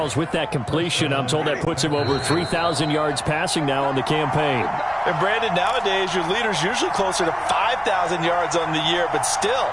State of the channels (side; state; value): both; identical; correlation 1.00